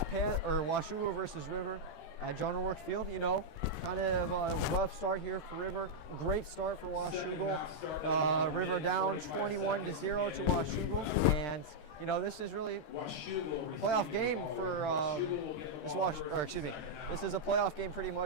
Washougal versus River at John O'Rourke Field. You know, kind of a rough start here for River. Great start for Washougal. River down 21-0 to Washougal, and you know this is really a playoff game for This is a playoff game pretty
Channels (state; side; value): late; right; 13 ms